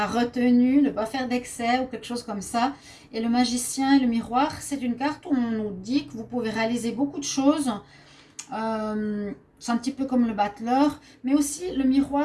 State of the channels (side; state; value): both; identical; correlation 1.00